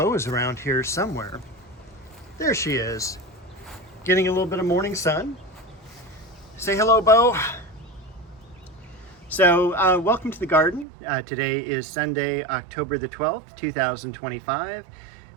is around here somewhere. There she is, getting a little bit of morning sun. Say hello, Bo. So, welcome to the garden. Today is Sunday, October the 12th, 2025.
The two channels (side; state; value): left; drops out; at 10.9 s